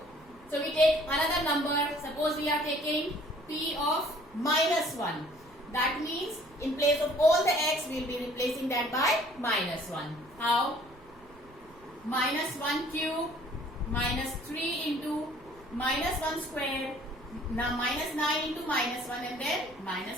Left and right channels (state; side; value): noise; right; rumble, 25 dB below the sound